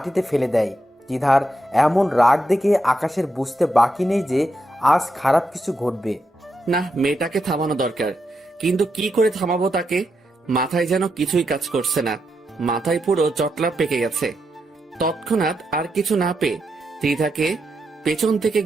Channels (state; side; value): normal; both; correlation 0.84